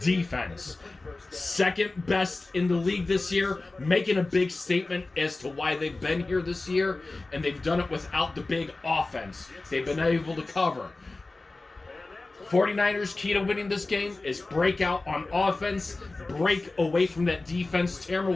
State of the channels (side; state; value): right; quieter; 3.3 dB